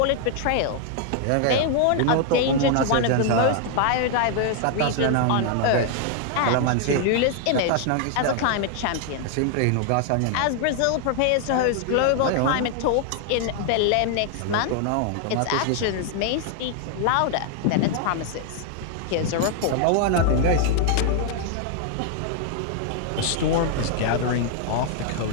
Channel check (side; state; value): both; different; correlation 0.00